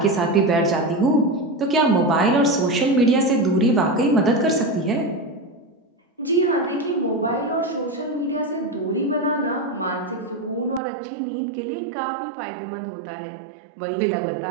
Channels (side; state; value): left; drops out; at 10.8 s